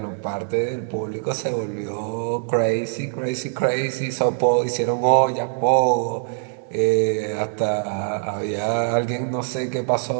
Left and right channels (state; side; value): silent; left; 64 dB below the other